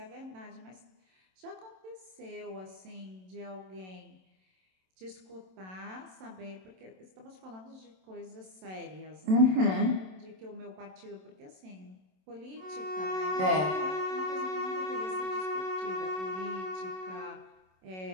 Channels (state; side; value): late; left; 27 ms